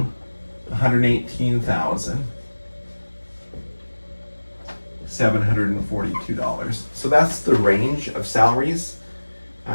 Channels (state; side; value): inverted; both; correlation -1.00